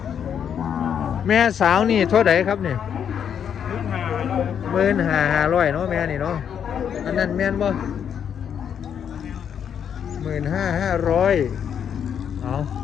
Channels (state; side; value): quieter; right; 8.3 dB